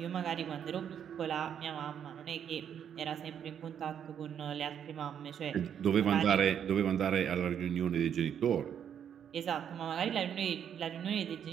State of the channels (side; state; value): left; quieter; 8.7 dB